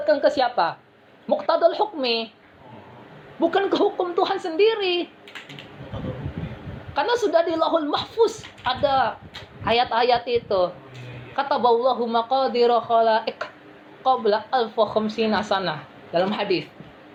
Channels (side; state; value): both; identical; correlation 1.00